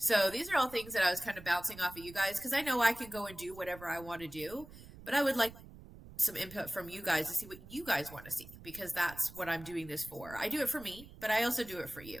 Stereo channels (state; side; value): noise; right; rumble, 17 dB below the sound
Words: these are all things that I was kind of bouncing off of you guys, because I know I can go and do whatever I want to do, but I would like some input from you guys to see what you guys want to see, because that's what I'm doing this for. I do it for me, but I also do it for